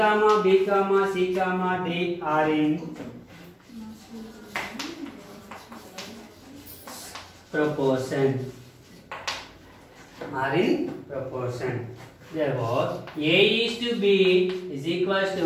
B comma C comma D are in proportion. Therefore, A is to B is equals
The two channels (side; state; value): both; identical; correlation 1.00